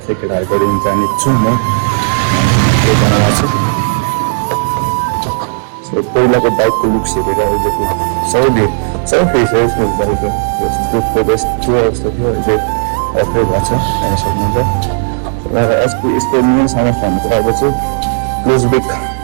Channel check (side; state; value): left; silent; digital silence